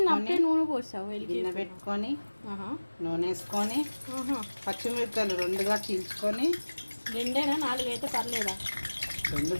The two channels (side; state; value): both; inverted; correlation -1.00